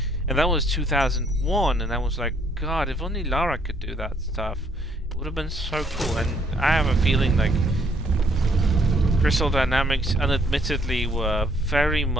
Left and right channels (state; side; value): normal; both; correlation 0.67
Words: And that was 2001, and I was like, God, if only Lara could do that stuff, it would have been so cool. And I have a feeling like Crystal Dynamics unadmittedly were very